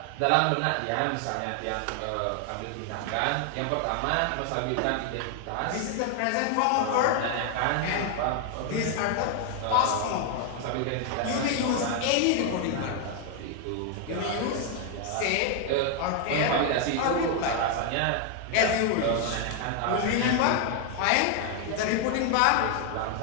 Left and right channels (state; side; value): different; both; correlation 0.00